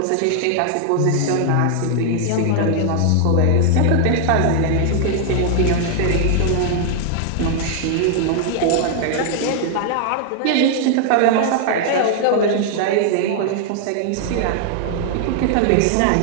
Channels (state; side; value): different; both; correlation -0.01